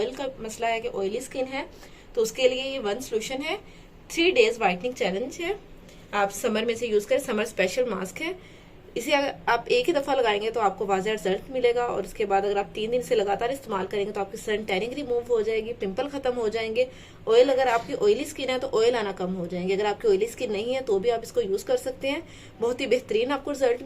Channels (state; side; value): identical; both; correlation 1.00